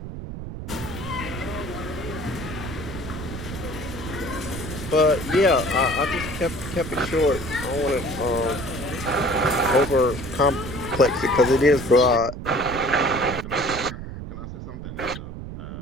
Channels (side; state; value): right; noise; rumble, 9 dB below the sound